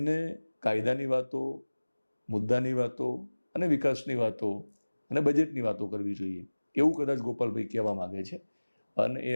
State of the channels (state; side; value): inverted; both; correlation -1.00